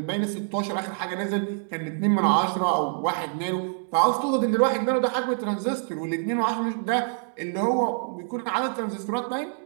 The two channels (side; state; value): left; silent; 61 dB below the other